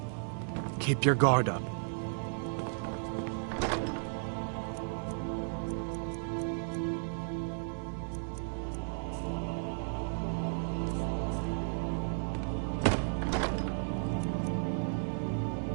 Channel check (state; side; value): silent; left; digital silence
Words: Keep your guard up.